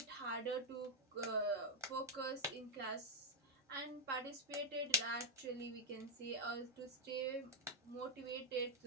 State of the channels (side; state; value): both; normal; correlation 0.00